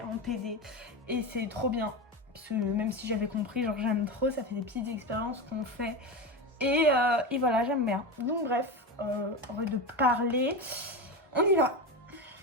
en TD et c'est trop bien. Parce que même si j'avais compris, genre j'aime trop, ça fait des petites expériences qu'on fait et voilà, j'aime bien. Donc bref, on va de parler, on y va.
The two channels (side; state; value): both; normal; correlation 0.20